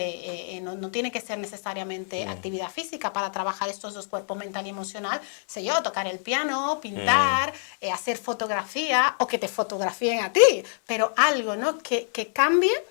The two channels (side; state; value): right; silent; 61 dB below the other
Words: no tiene que ser necesariamente actividad física para trabajar estos dos cuerpos, mental y emocional, sé yo, tocar el piano, pintar, hacer fotografía, o que te fotografíen a ti, pero algo, ¿no? Que cambie